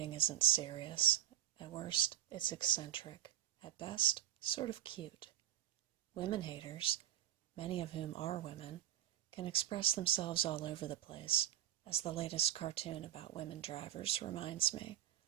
isn't serious. At worst, it's eccentric. At best, sort of cute. Women-haters, many of whom are women, can express themselves all over the place, as the latest cartoon about women drivers reminds me,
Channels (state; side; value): quieter; left; 13.0 dB